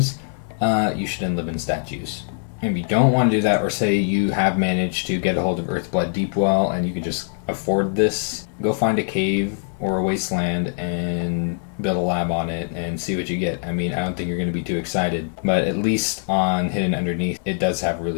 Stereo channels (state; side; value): silent; right; digital silence